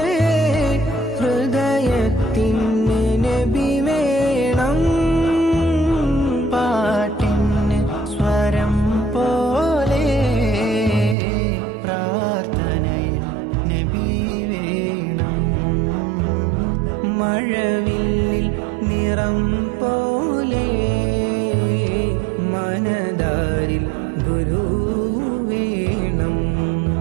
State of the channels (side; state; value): left; drops out; at 11.2 s